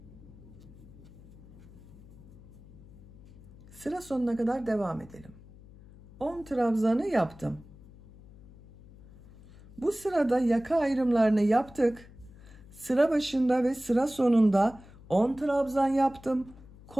Sıra sonuna kadar devam edelim. 10 trabzanı yaptım. Bu sırada yaka ayrımlarını yaptık. Sıra başında ve sıra sonunda 10 trabzan yaptım.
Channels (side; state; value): left; noise; hum, 21 dB below the sound